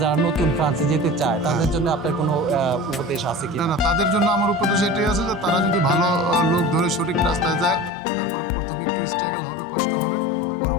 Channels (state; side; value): drops out; right; at 7.9 s